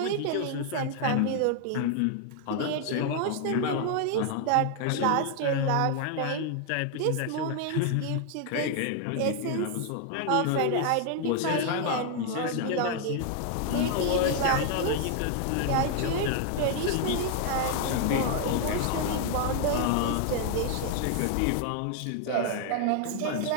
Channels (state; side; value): different; both; correlation 0.00